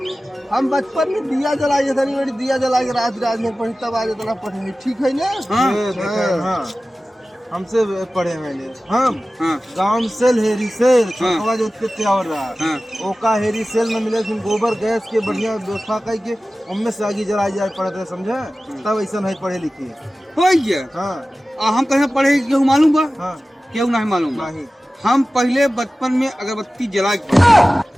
हम बचपन में दिया जलाए थे नहीं, दिया जला के रात रात में पढ़ी तब आज इतना पढ़े ठीक है ना। हाँ ये देखा है, हाँ हमसे पढ़े मैंने हम हाँ गांव सेल हेरी सेल हाँ। छोटवा जो उत्ते त्यावर रहा हाँ ओका हेरी सेल में मिले फिर गोबर गैस के बढ़िया व्यवस्था करके उनमें से आगे जलाई जाए पढ़ते रहे, समझे तब ऐसा नहीं पढ़े लिखे। हो गया हाँ हम कहे पढ़े क्यों मालूम बा हाँ क्यों नहीं मालूम बा। नहीं हम पहले बचपन में अगरबत्ती जला के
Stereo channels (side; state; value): both; normal; correlation 0.96